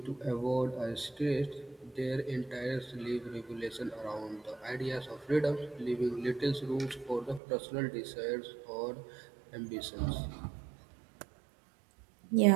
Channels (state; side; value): drops out; left; at 7.4 s